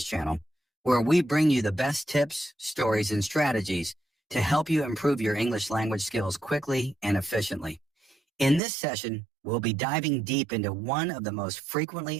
channel, where we bring you the best tips, stories, and strategies to help you improve your English language skills quickly and efficiently. In this session, we'll be diving deep into one of the most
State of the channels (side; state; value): left; drops out; at 8.6 s